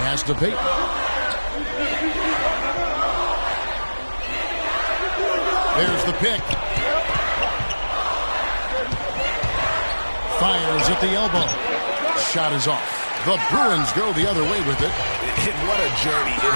to Peyton. There's the pick. Fires at the elbow. Shot is off. The Bruins go the other way with it. And what a journey it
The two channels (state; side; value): inverted; both; correlation -1.00